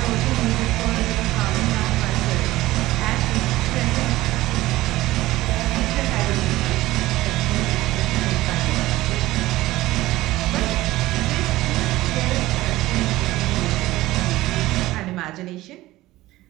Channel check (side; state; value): left; quieter; 17.3 dB